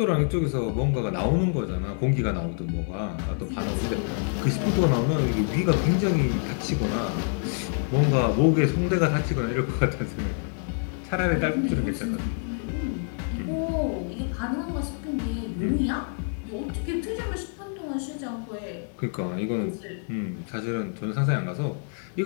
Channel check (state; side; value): silent; right; 60 dB below the other